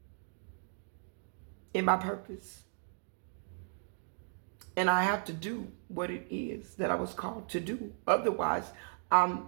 in my purpose. And I have to do what it is that I was called to do. Otherwise, I'm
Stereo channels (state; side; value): silent; left; 54 dB below the other